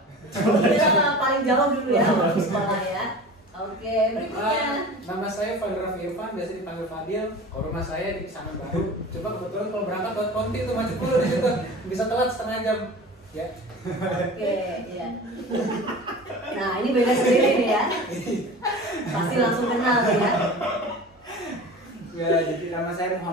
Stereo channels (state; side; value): normal; both; correlation 0.37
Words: Kita paling jauh dulu ya waktu sekolah ya. Oke, berikutnya. Nama saya Fadil Raffi Irfan, biasa dipanggil Fadil. Kalau rumah saya di Pisangan Baru. Coba kebetulan kalau berangkat ke Ponti itu macet dulu di situ, bisa telat setengah jam. Ya. Oke, ya. Nah, ini beda sendiri nih ya. Pasti langsung kenal ya. Ya, jadi nama saya